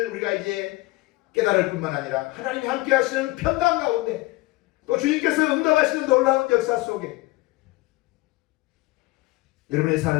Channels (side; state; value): right; quieter; 20.8 dB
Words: 우리가 이제 깨달을 뿐만 아니라 하나님이 함께 하시는 평강 가운데 또 주님께서 응답하시는 놀라운 역사 속에 여러분의